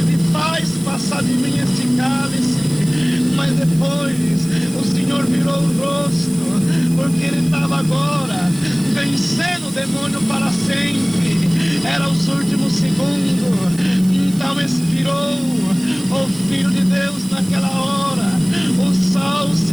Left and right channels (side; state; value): right; noise; hiss, 18 dB below the sound